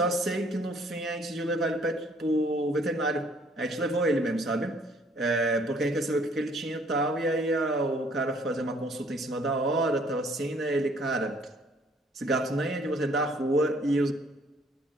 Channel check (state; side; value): normal; both; correlation 0.61